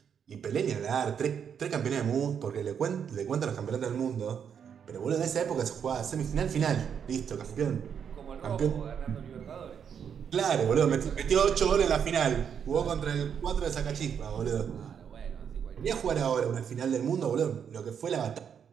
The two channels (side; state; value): left; quieter; 7.7 dB